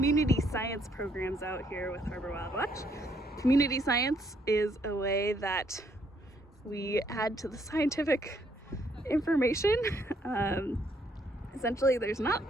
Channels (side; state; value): both; normal; correlation 0.70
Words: science programs out here with Harbor WildWatch. Community science is a way that we add to the scientific information. Essentially, there's not